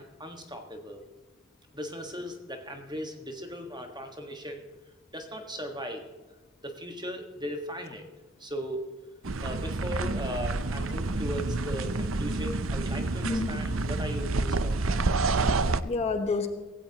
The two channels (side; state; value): both; normal; correlation 0.56